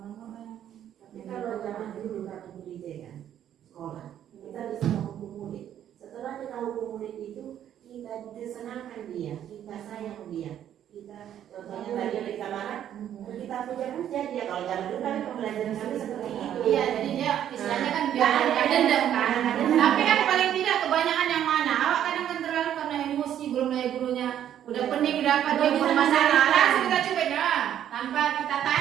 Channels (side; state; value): left; quieter; 10.5 dB